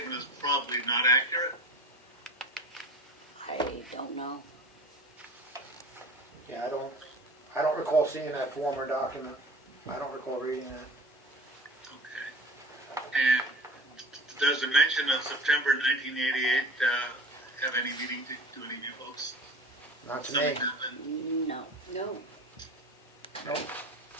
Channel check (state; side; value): normal; both; correlation 0.39